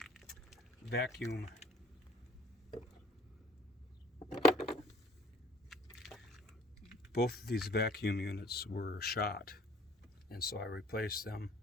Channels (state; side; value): normal; both; correlation 0.53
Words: vacuum both of these vacuum units were shot, and so I replaced them